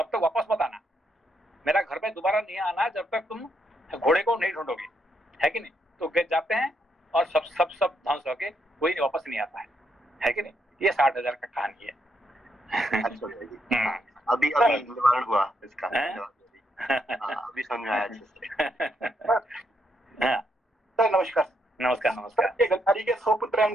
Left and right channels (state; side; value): normal; both; correlation 0.77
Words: तक वापस मत आना, मेरा घर में दोबारा नहीं आना जब तक तुम घोड़े को नहीं ढूंढोगे, है कि नहीं। तो वे जाते हैं और सब ध्वंस होके कोई नहीं वापस नहीं आता है कि नहीं। ये 60,000 का कहानी है। अच्छा भैया जी, अभी निवारण हुआ इसका, अभी समझ आया अच्छे से। सर नमस्कार। नमस्कार नमस्कार। गांधारी के 100 पुत्र हैं,